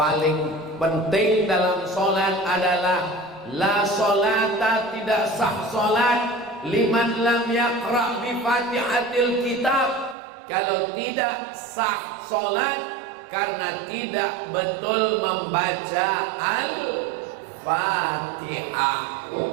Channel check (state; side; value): drops out; left; at 10.2 s